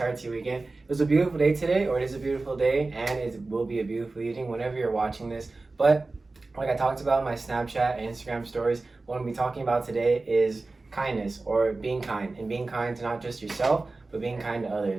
to your weekend. It was a beautiful day today, or it is a beautiful day, and it will be a beautiful evening whenever you're watching this. But like I talked about in my Snapchat and Instagram stories, what I'm going to be talking about today is kindness, or being kind, and being kind to not just yourself, but being kind to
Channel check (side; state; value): left; quieter; 3.4 dB